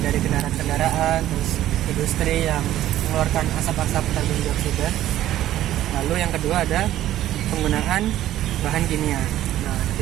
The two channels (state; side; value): quieter; left; 13.2 dB